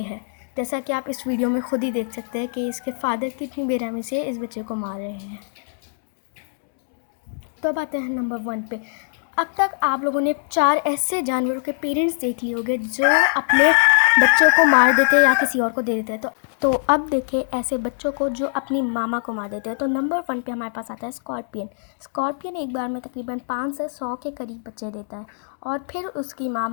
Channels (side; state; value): right; silent; digital silence